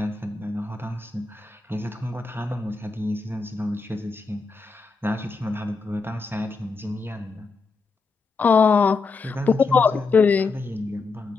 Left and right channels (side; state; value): right; quieter; 4.3 dB